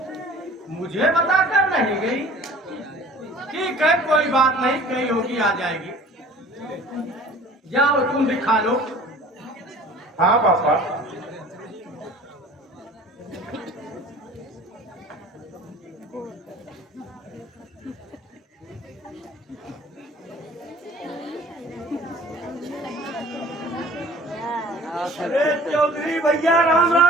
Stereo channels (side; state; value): both; normal; correlation 0.48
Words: मुझे बताकर नहीं गई। ठीक है, कोई बात नहीं, कहीं होगी आ जाएगी। जाओ तुम भी खा लो। हाँ पापा। अरे चौधरी भैया राम